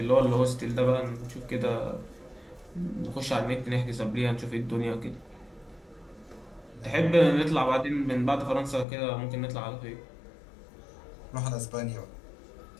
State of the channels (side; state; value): right; drops out; at 8.8 s